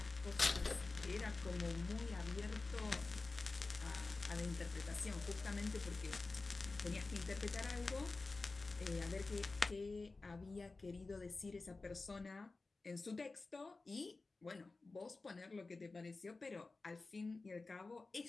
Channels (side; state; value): right; quieter; 3.6 dB